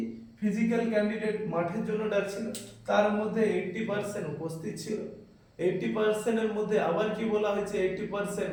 ফিজিক্যাল ক্যান্ডিডেট মাঠের জন্য ডাকছিল, তার মধ্যে 80% উপস্থিত ছিল। 80% এর মধ্যে আবার কি বলা হয়েছে, 80%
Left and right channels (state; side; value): identical; both; correlation 1.00